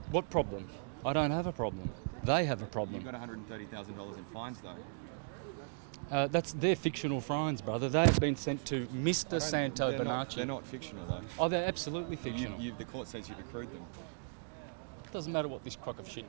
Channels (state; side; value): silent; left; digital silence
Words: What problem? I don't have a problem. They have a problem. You've got $130,000 in fines, though. That's their fictional fines, brother. They've been sent to Mr. Santos Bonacci. They're not fictional, though. Oh, they're absolutely fictional. The court says you've accrued them. It doesn't matter what this crock of